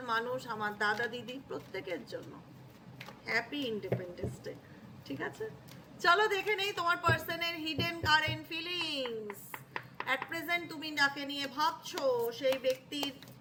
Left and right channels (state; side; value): identical; both; correlation 1.00